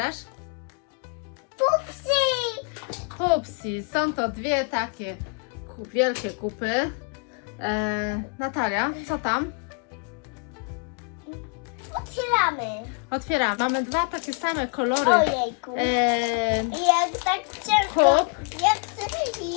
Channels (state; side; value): quieter; right; 37.9 dB